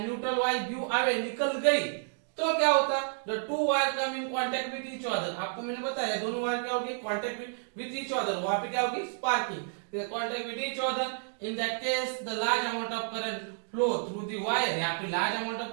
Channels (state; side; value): silent; left; digital silence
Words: neutral wire give away, निकल गई, तो क्या होता, the two wire come in contact with each other, आपको मैंने बताया दोनों वायर क्या होगी, कांटेक्ट विद ईच अदर, वहां पे क्या होगी, sparking, contact with each other, in that case the large amount of current flow through the wire, यहाँ पे large amount